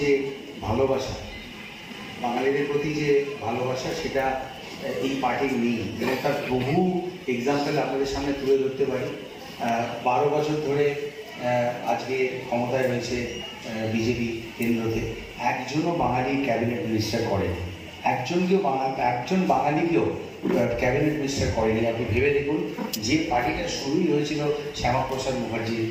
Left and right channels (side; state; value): both; identical; correlation 1.00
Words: যে ভালোবাসা সেটা এই পার্টির নেই, এবং তার বহু এক্সাম্পল আপনাদের সামনে তুলে ধরতে পারি। 12 বছর ধরে আজকে ক্ষমতায় রয়েছে বিজেপি কেন্দ্রতে, একজনও বাঙালি ক্যাবিনেট মিনিস্টার করেনি, একজন বাঙালিকেও ক্যাবিনেট মিনিস্টার করেনি। আপনি ভেবে দেখুন, যে পার্টিটা শুরুই হয়েছিল শ্যামাপ্রসাদ মুখার্জির